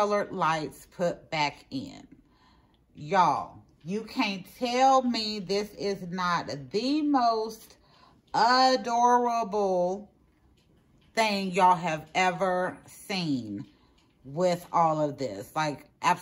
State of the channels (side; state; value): both; identical; correlation 1.00